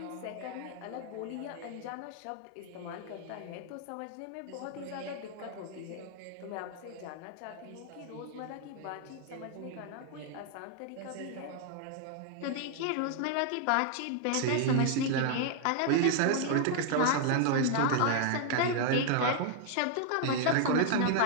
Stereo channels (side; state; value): both; different; correlation 0.00